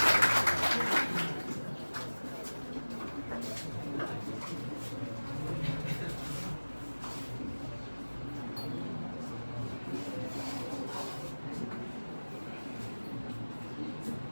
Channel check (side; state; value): both; inverted; correlation -1.00